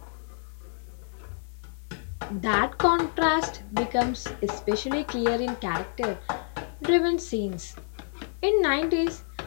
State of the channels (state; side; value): silent; right; digital silence